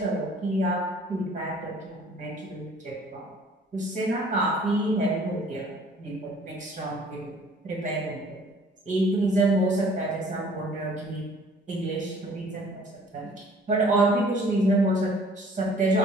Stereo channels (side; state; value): both; normal; correlation 0.54